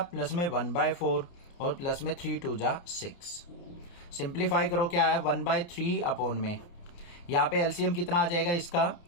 प्लस में 1/4 और प्लस में 3 2 जा 6। सिंप्लीफाई करो क्या है 1/3 अपॉन में यहाँ पे एलसीएम कितना आ जाएगा इसका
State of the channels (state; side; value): late; right; 29 ms